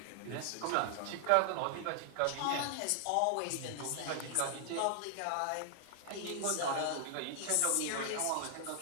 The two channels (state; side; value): different; both; correlation 0.00